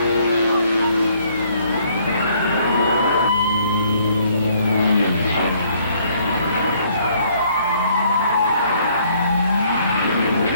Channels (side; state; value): both; inverted; correlation -0.64